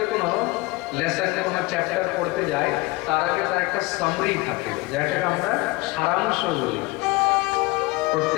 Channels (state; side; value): quieter; right; 22.1 dB